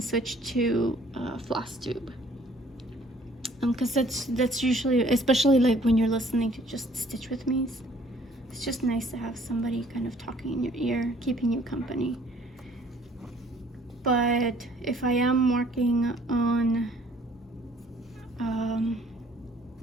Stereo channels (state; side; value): normal; both; correlation 0.58